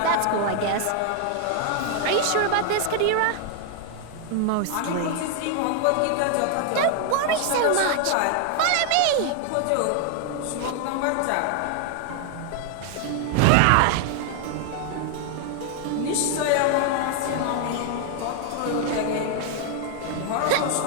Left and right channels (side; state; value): both; different; correlation 0.00